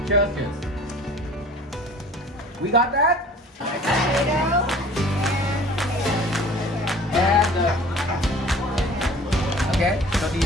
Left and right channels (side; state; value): both; normal; correlation 0.46